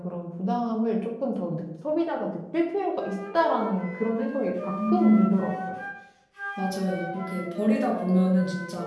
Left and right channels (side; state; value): both; identical; correlation 1.00